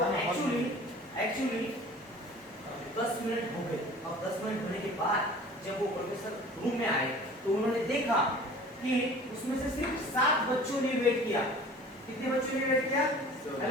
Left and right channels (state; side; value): normal; both; correlation 0.44